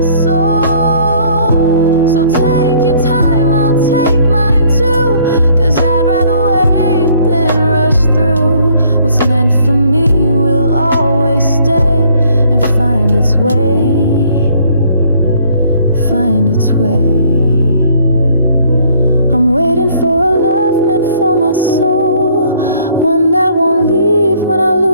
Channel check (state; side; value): inverted; both; correlation -0.61